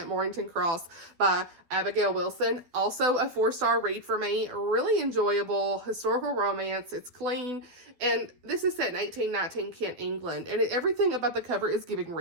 Moorington Cross by Abigail Wilson. Also a 4-star read for me. Really enjoyable historical romance. It's clean. And this is set in 1819 Kent, England. And everything about the cover is giving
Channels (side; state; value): left; late; 12 ms